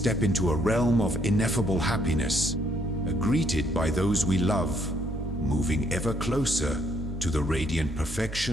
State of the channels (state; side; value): normal; both; correlation 0.69